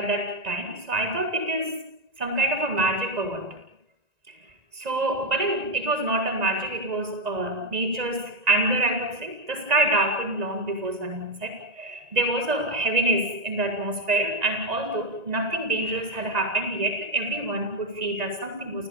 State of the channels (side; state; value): left; late; 1.9 ms